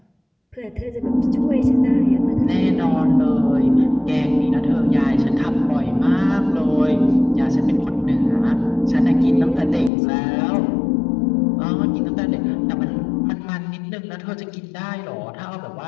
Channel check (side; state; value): right; drops out; at 9.9 s